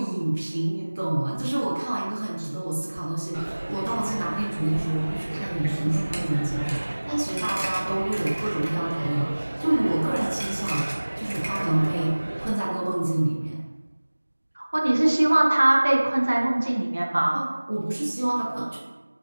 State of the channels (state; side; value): inverted; both; correlation -1.00